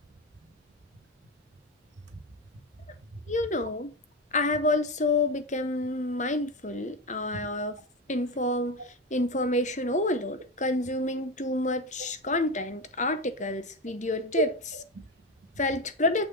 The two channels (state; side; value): normal; both; correlation 0.17